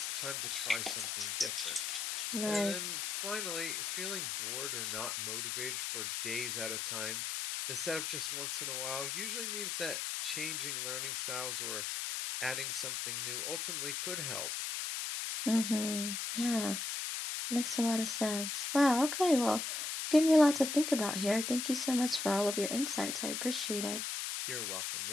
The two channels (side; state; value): left; noise; hiss, 2 dB below the sound